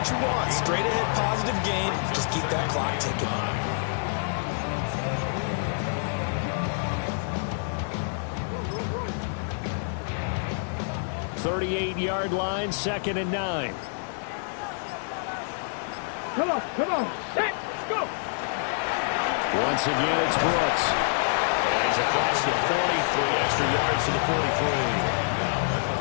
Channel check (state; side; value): silent; right; digital silence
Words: you want. Straight ahead positive gain. Just keep that clock ticking. .38-yard line, 2nd and 9. Come on. Set, go. Once again, it's Brooks. And he's across the 40, 3 extra yards to the 43.